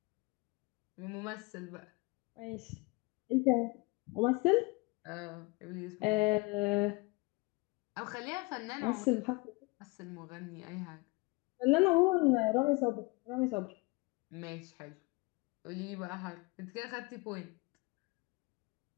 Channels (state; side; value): quieter; right; 26.4 dB